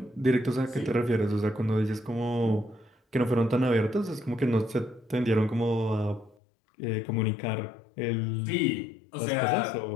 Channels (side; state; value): right; drops out; at 6.4 s